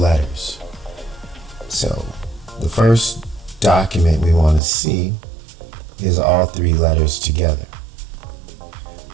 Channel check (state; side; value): drops out; left; at 4.6 s